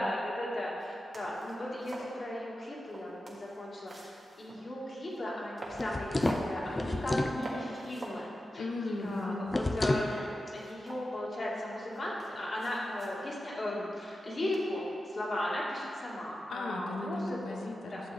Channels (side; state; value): both; normal; correlation 0.92